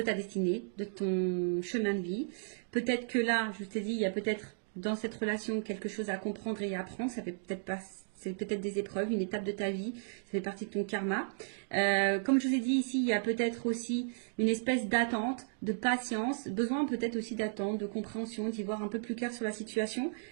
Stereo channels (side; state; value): left; silent; digital silence